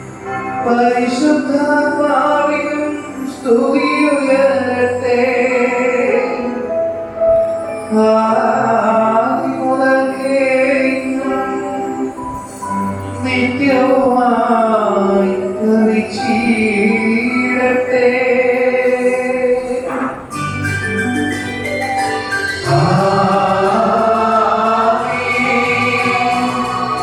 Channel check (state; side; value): identical; both; correlation 1.00